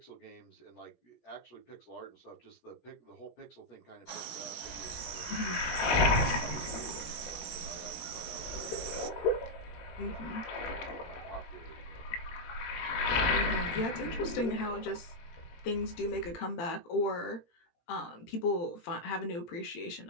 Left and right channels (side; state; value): right; late; 18 ms